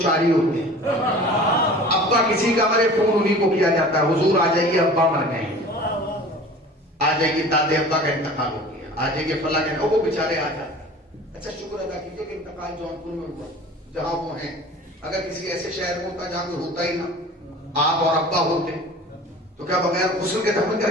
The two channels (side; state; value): both; normal; correlation 0.42